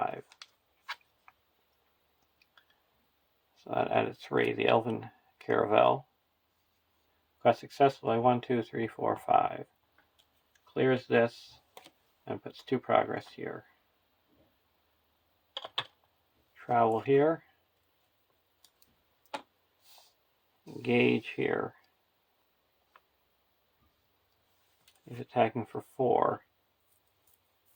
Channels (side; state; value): both; identical; correlation 1.00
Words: So that added 3. The Elven Caravel. Quest successfully 1, 2, 3, 4, 5. Clears this and puts 2 progress here. Travel here. engage here. He's attacking for 4.